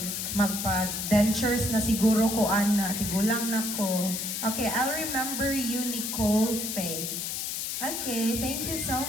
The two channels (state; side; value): noise; left; hiss, 3 dB below the sound